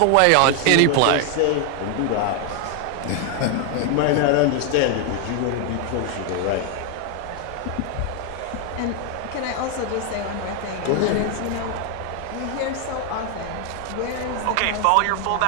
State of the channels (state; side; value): different; both; correlation 0.00